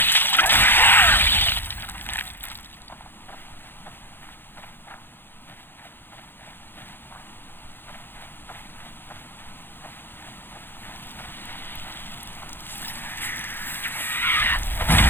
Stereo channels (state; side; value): late; right; 0.10 ms